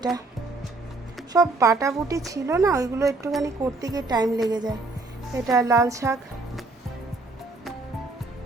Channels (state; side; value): quieter; left; 3.4 dB